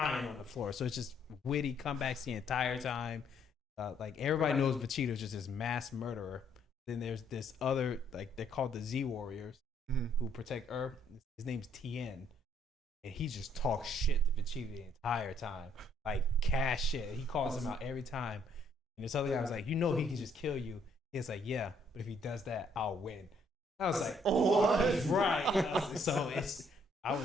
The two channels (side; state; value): both; normal; correlation 0.67